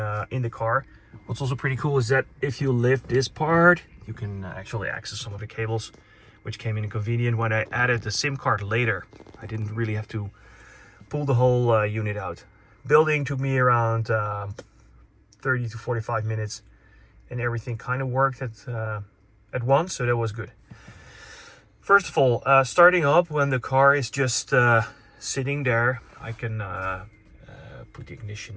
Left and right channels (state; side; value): identical; both; correlation 1.00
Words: in the car. What's also pretty cool is that if you lift this part, you can actually access some of the cables, which came in convenient when I added the SIM card later. I didn't really have to pull the whole unit out. Building took me around 30 to 45 minutes, and everything kind of worked at once, so that was good. First of all, starting up when the car is just sitting there, I can put the